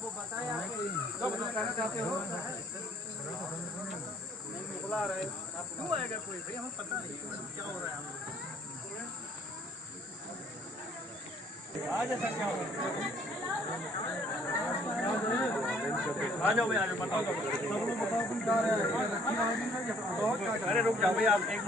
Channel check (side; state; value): both; normal; correlation 0.57